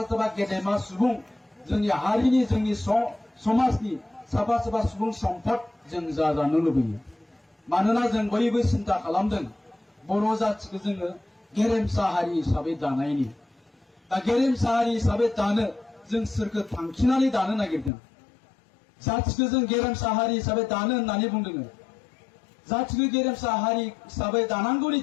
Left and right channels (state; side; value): drops out; right; at 17.9 s